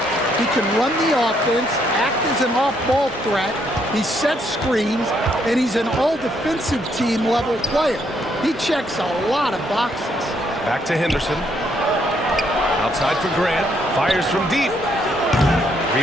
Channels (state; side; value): normal; both; correlation 0.72